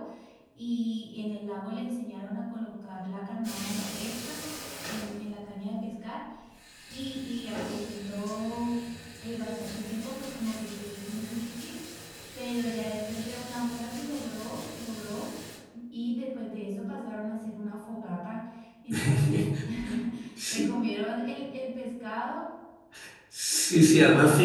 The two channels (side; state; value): both; identical; correlation 1.00